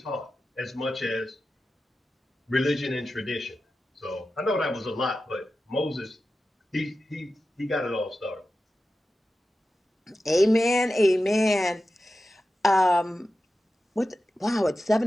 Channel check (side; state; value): both; normal; correlation 0.92